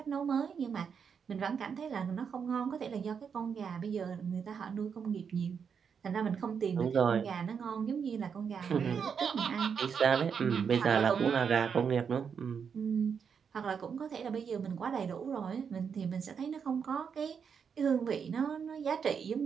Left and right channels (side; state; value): left; quieter; 6.7 dB